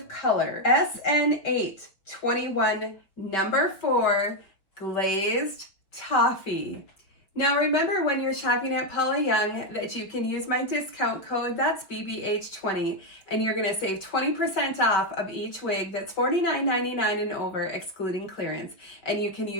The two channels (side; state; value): right; late; 5.0 ms